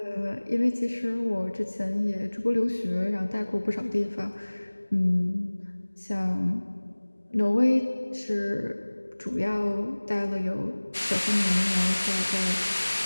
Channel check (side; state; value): both; inverted; correlation -1.00